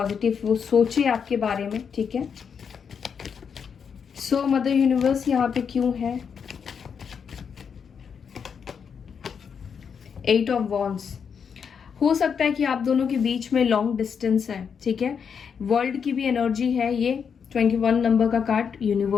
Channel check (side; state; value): right; quieter; 6.7 dB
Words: वो सोचे आपके बारे में, ठीक है। सो मदर यूनिवर्स यहाँ पे क्यों है? 8 ऑफ वॉन्ड्स। हो सकता है कि आप दोनों के बीच में लॉन्ग डिस्टेंस है, ठीक है। वर्ल्ड की भी एनर्जी है ये, 21 नंबर का कार्ड